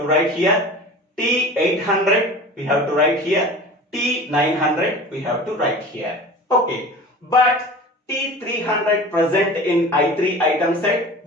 write here. T800 we have to write here. T900 we have to write here. Okay, but T300 present in I3 item set,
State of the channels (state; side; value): normal; both; correlation 0.37